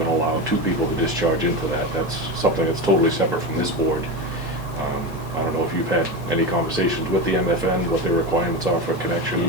allow two people to discharge into that. That's something that's totally separate from this board. I don't know if you've had any conversations with the MFN, what their requirements are for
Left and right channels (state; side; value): late; right; 7.2 ms